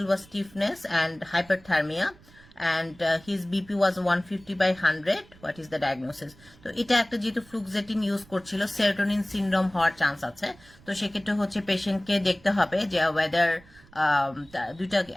was stiffness and hyperthermia and his BP was 150 by 100. What is the diagnosis? তো এটা একটা যেহেতু fluoxetine use করছিল, serotonin syndrome হওয়ার chance আছে। তো সেক্ষেত্রে হচ্ছে পেশেন্টকে দেখতে হবে যে ওয়েদার দুইটা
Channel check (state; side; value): noise; right; rumble, 25 dB below the sound